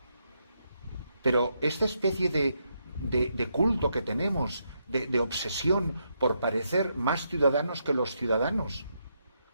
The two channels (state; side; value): inverted; both; correlation -0.79